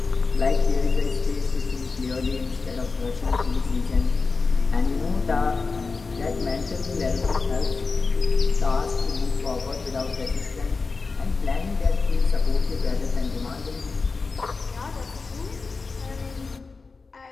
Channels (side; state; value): right; quieter; 4.3 dB